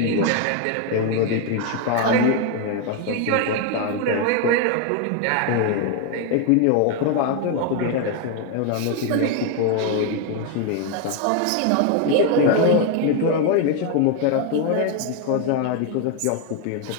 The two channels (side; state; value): both; different; correlation 0.01